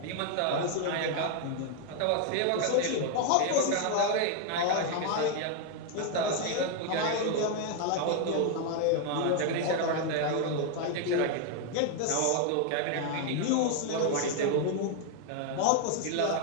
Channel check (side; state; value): both; different; correlation 0.01